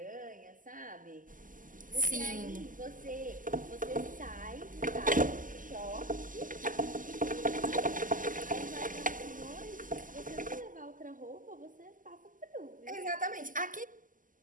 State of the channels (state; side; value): late; left; 0.38 ms